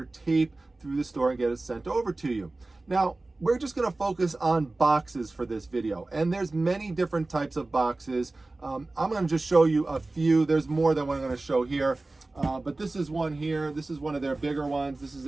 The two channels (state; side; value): quieter; left; 3.1 dB